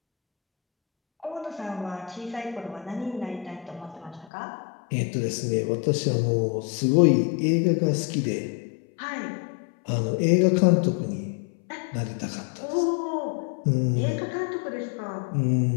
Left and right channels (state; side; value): drops out; right; at 4.2 s